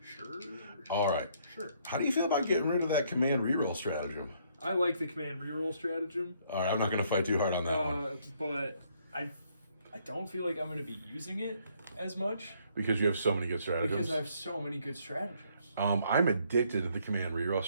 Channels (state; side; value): inverted; both; correlation -0.68